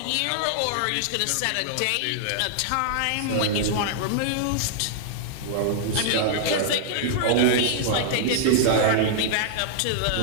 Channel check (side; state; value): both; different; correlation -0.01